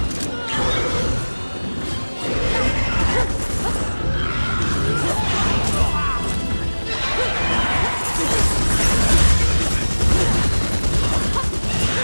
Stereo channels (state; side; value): inverted; both; correlation -1.00